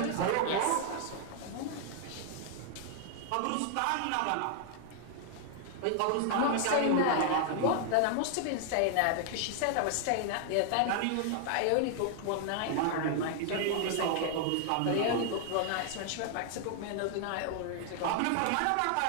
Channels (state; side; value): different; both; correlation 0.00